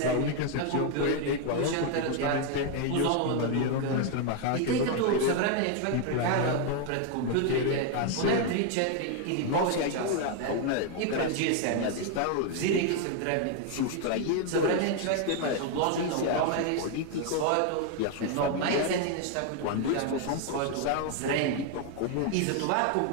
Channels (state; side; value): different; both; correlation 0.01